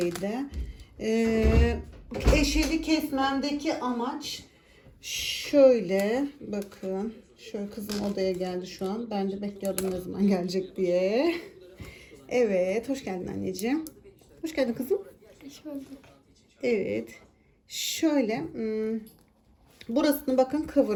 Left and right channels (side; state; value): both; identical; correlation 1.00